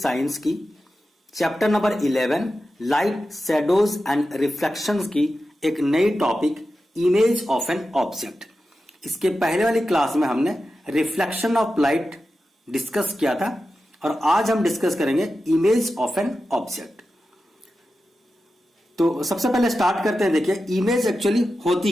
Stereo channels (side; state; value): both; normal; correlation 0.92